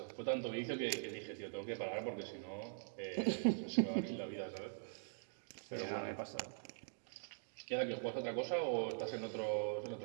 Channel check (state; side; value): silent; left; digital silence